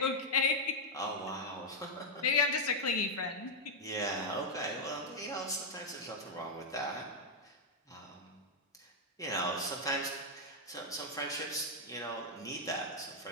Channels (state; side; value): normal; both; correlation -0.02